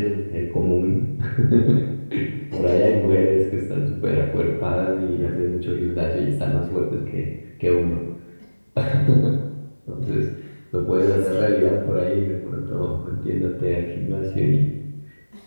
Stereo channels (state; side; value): inverted; both; correlation -1.00